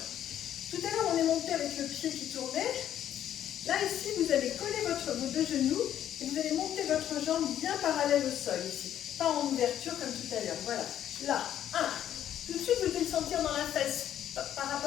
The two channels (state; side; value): quieter; right; 10.9 dB